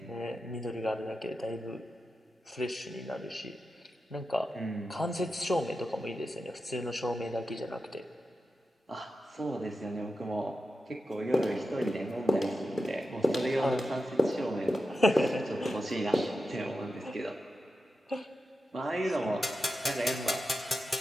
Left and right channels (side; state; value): both; normal; correlation 0.90